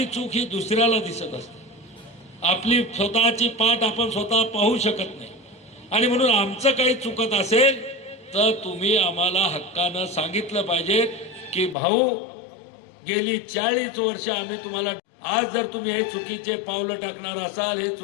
चूक ही दुसऱ्याला दिसत असते, आपली स्वतःची पाठ आपण स्वतः पाहू शकत नाही. आणि म्हणून आमचं काही चुकत असेल तर तुम्ही आम्हाला हक्कानं सांगितलं पाहिजे की भाऊ, गेली 40 वर्ष आम्ही तुम्हाला, आज जर तुम्ही हे चुकीचे पावलं टाकणार असाल, हे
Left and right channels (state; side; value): drops out; right; at 11.8 s